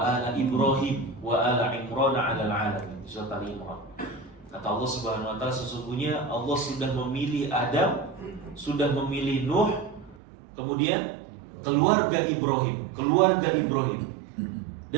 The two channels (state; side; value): drops out; left; at 10.2 s